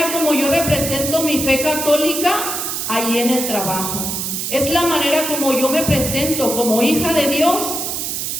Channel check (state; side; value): noise; right; hiss, 3 dB below the sound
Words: como yo represento mi fe católica ahí en el trabajo. Es la manera como yo me presento como hija de Dios